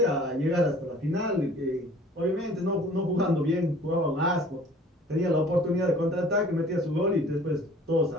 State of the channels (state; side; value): normal; both; correlation 0.50